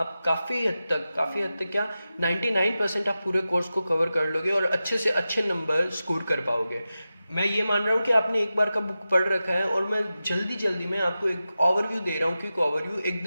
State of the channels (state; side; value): inverted; both; correlation -0.93